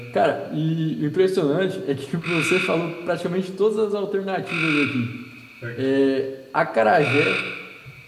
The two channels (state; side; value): identical; both; correlation 1.00